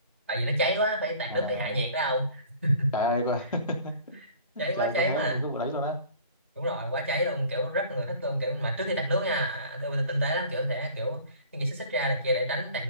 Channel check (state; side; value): inverted; both; correlation -0.48